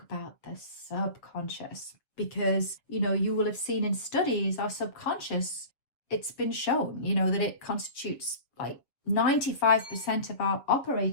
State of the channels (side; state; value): right; late; 7.3 ms